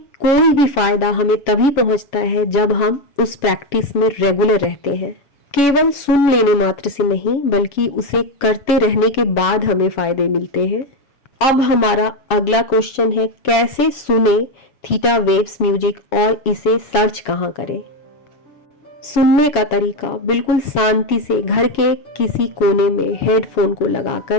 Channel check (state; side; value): late; right; 7.1 ms